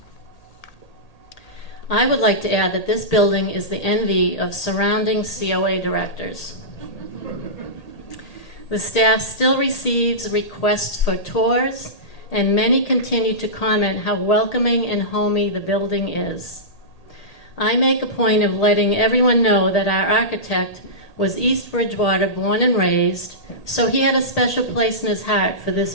I would like to add that this building is the envy of surrounding COA directors. The staff still receives requests for tours, and many continue to comment how welcoming and homey the building is. I make a point of letting everyone know that our architect was East Bridgewater born and raised, so he had a special place in his heart for this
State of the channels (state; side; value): late; right; 1.8 ms